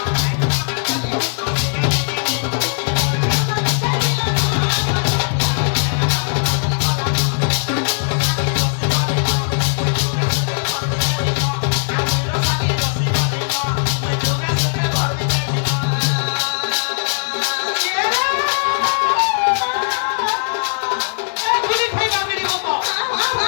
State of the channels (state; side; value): silent; right; 67 dB below the other